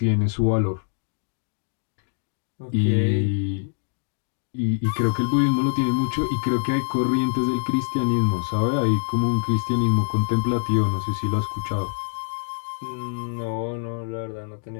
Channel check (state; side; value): silent; right; digital silence